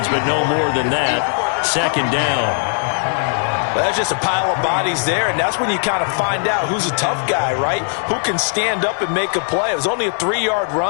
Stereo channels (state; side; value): silent; right; 62 dB below the other